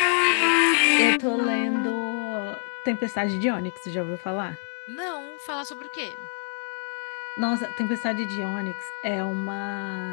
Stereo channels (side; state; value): right; silent; 59 dB below the other